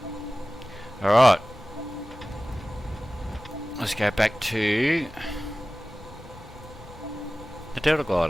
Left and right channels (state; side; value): normal; both; correlation 0.97